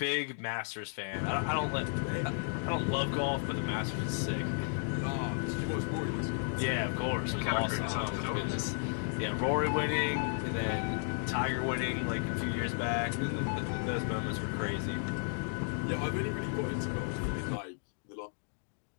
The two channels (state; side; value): silent; right; digital silence